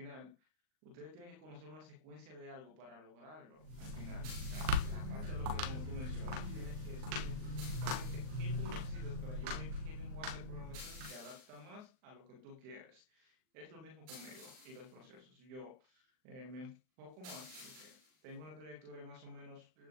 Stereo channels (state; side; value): late; left; 39 ms